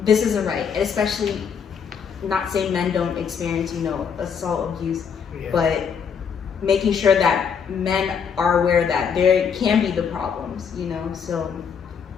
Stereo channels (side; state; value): right; quieter; 6.9 dB